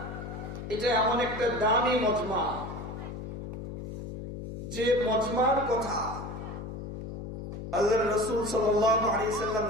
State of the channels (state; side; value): noise; left; hum, 8 dB below the sound